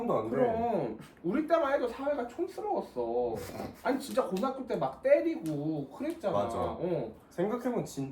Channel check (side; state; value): both; identical; correlation 1.00